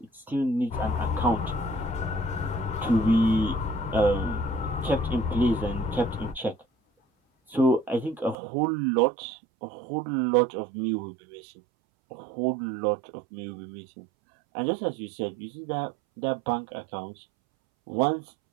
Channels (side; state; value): left; drops out; at 8.3 s